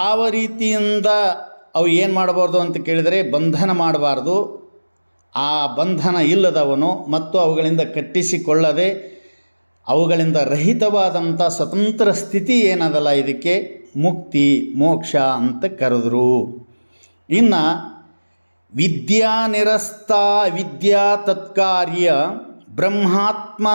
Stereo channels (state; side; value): inverted; both; correlation -1.00